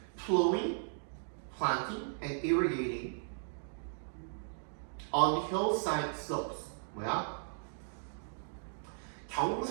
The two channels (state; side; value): silent; left; digital silence